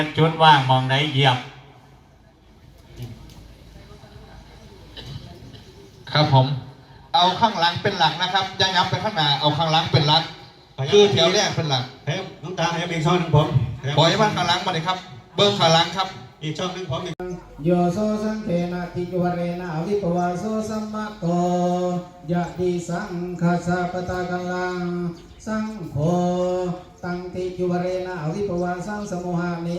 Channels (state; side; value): identical; both; correlation 1.00